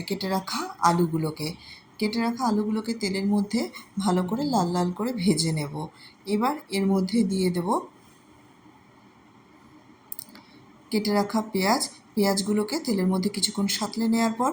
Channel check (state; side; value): identical; both; correlation 1.00